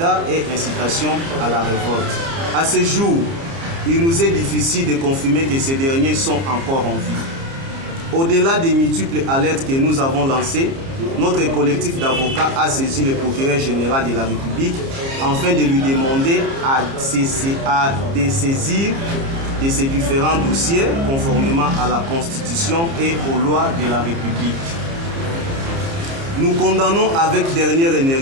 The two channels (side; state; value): left; late; 30 ms